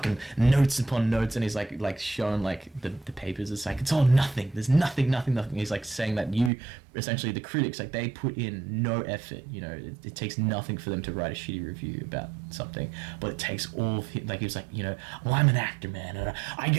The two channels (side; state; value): left; drops out; at 6.5 s